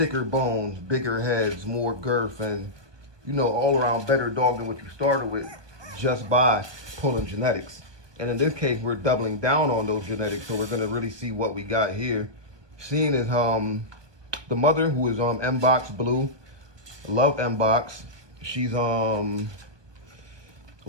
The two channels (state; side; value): late; left; 1.1 ms